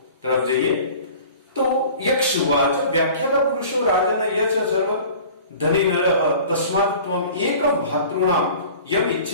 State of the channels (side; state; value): both; inverted; correlation -0.44